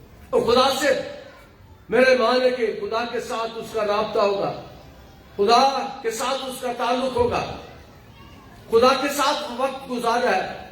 اور خدا سے میرے مان ہے کہ خدا کے ساتھ اس کا رابطہ ہوگا، خدا کے ساتھ اس کا تعلق ہوگا، خدا کے ساتھ وقت گزار رہا ہے،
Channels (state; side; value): identical; both; correlation 1.00